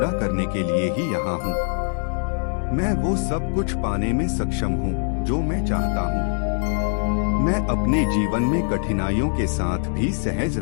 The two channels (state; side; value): silent; right; digital silence